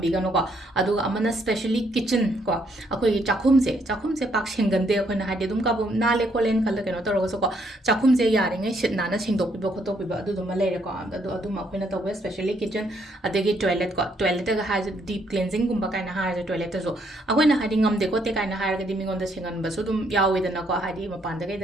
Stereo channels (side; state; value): both; normal; correlation 0.71